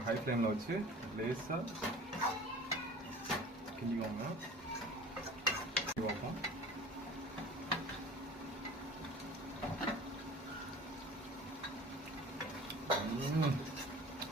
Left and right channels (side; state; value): both; normal; correlation 0.42